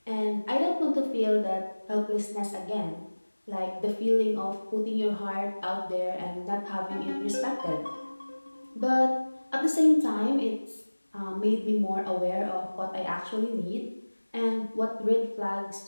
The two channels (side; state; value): both; inverted; correlation -1.00